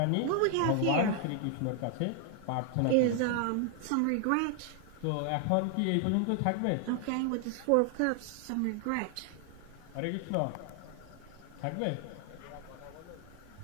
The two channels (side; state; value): both; different; correlation 0.00